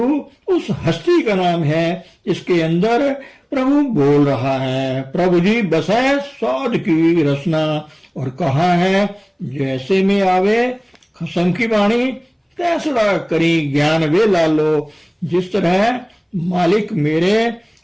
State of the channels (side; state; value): both; identical; correlation 1.00